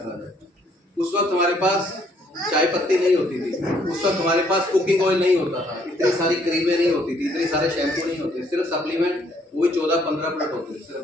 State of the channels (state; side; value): normal; both; correlation 0.67